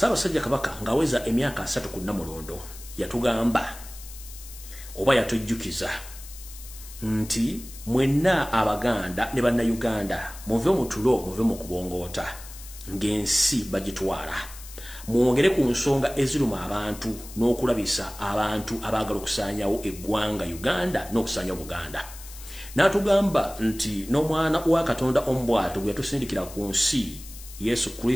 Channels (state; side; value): noise; left; hiss, 16 dB below the sound